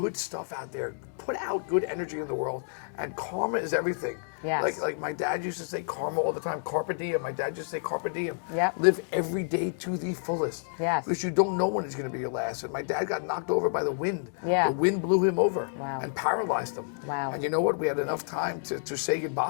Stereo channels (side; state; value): right; silent; digital silence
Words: stuff out there. Put out good energy in the world, and karma is everything. Yes. Like my dad used to say karma all the time. Carpe diem. My dad used to say carpe diem. Yep. Live every day to the fullest. Yes. Because you don't know when it's going to be your last. And my dad got knocked over by the wind. Yeah. The wind blew him over. Wow. And paralyzed him. Wow. And you know what? We had enough time to say